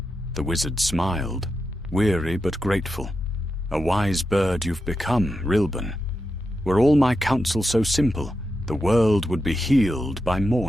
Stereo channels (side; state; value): both; normal; correlation 0.88